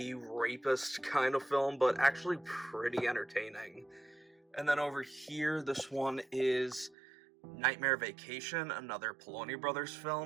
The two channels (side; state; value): left; drops out; at 7.0 s